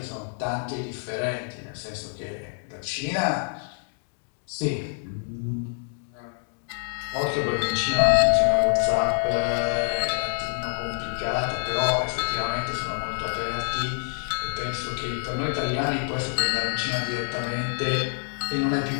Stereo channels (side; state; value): right; silent; 58 dB below the other